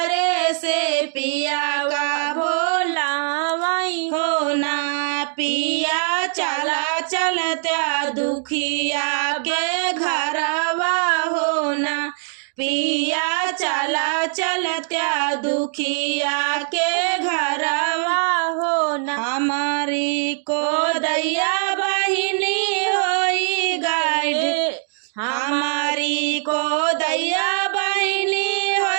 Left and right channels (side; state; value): left; silent; digital silence